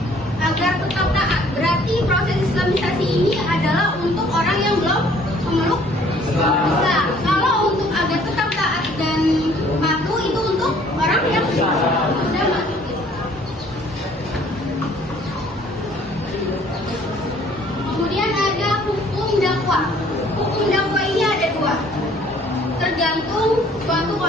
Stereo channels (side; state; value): both; normal; correlation 0.58